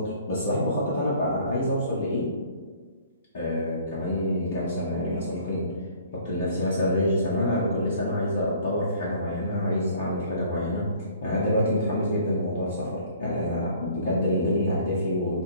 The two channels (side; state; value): both; inverted; correlation -0.54